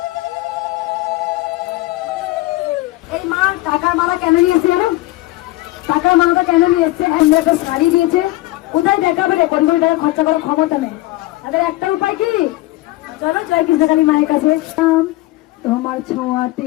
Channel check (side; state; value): right; quieter; 18.7 dB